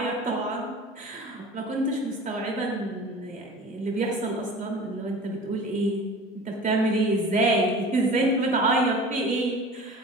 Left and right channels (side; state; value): both; normal; correlation 0.39